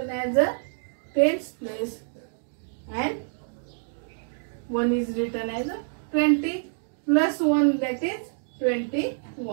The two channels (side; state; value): left; silent; digital silence